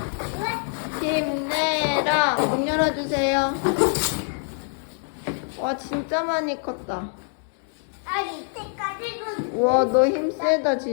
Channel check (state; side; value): silent; right; 62 dB below the other